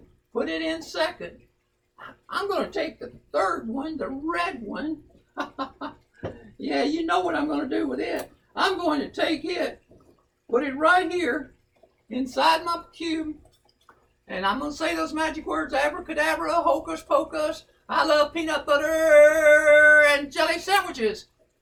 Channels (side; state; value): both; identical; correlation 1.00